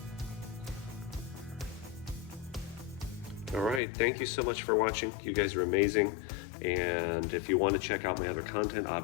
All right, thank you so much for watching. You guys are amazing. And if you want to check out my other content,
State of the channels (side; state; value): right; drops out; at 3.8 s